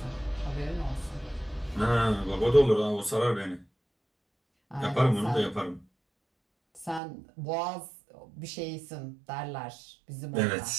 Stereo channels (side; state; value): left; drops out; at 7.0 s